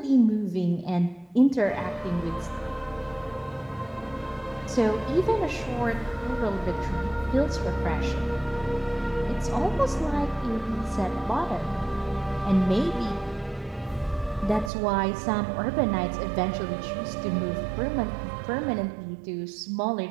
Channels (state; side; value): drops out; left; at 14.7 s